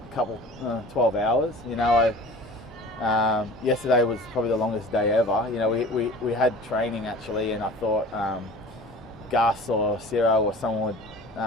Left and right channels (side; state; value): both; normal; correlation 0.41